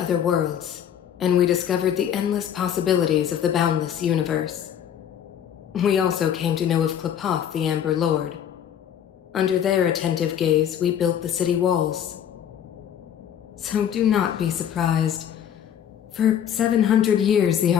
worlds, and we discovered the endless possibilities of the boundless universe. We also came to know of Klapoth, the Amber Lord. Under their attentive gaze, we built the city walls. So do not be surprised. For 700 years, the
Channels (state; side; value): quieter; right; 9.4 dB